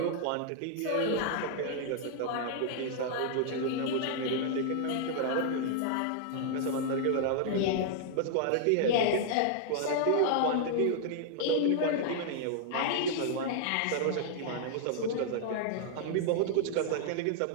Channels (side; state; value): both; different; correlation -0.01